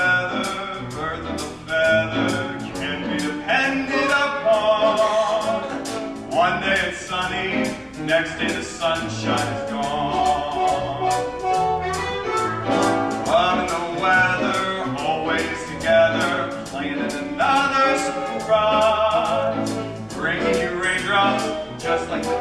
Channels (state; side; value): identical; both; correlation 1.00